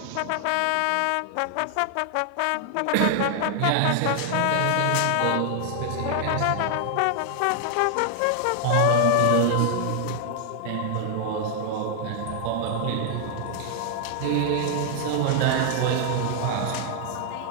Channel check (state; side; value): different; both; correlation 0.00